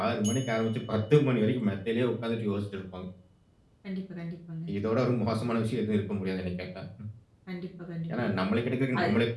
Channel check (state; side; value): identical; both; correlation 1.00